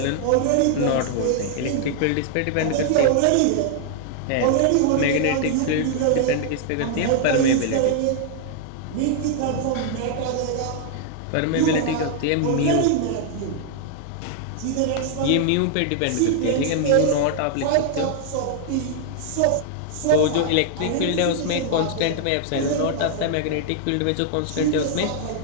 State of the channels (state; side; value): different; both; correlation 0.00